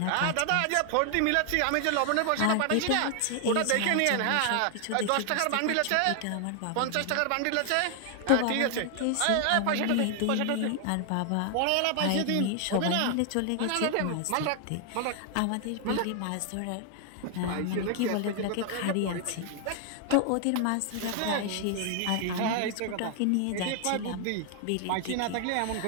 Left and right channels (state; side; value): different; both; correlation 0.00